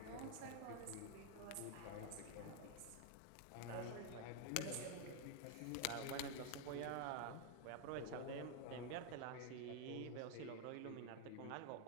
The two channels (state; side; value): different; both; correlation 0.01